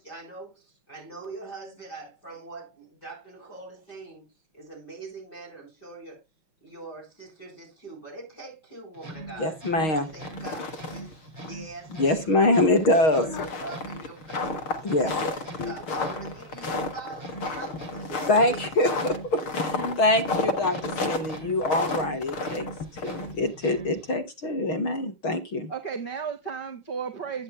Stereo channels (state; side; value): late; right; 6.6 ms